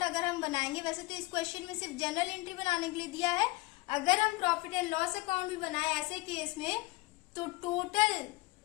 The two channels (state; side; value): quieter; right; 21.7 dB